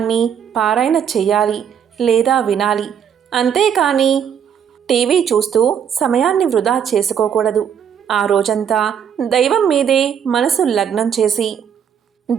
పారాయణ చెయ్యాలి లేదా వినాలి. అంతేకాని టీవీ చూస్తూ సమయాన్ని వృధా చేసుకోకూడదు. ఆ రోజంతా దైవం మీదే మనసు లగ్నం చేసి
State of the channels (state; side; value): quieter; left; 8.2 dB